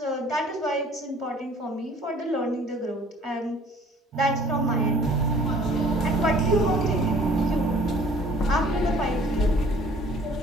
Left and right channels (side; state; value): both; normal; correlation 0.53